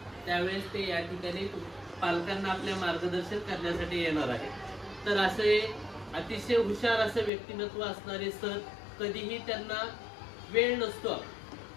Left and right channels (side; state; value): right; drops out; at 7.3 s